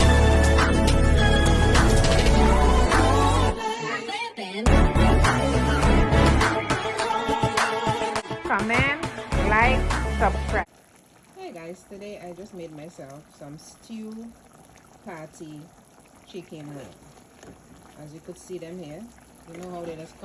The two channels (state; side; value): identical; both; correlation 1.00